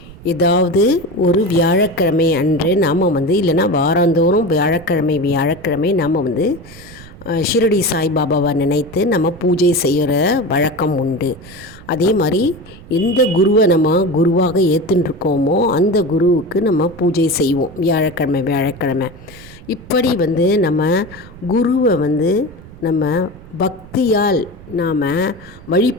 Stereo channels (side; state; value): right; noise; rumble, 19 dB below the sound